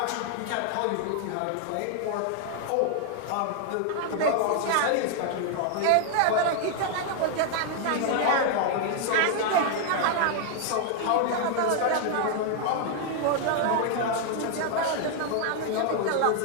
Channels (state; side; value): different; both; correlation 0.00